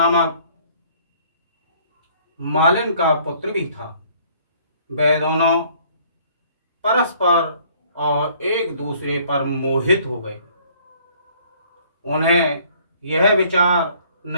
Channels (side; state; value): both; inverted; correlation -0.59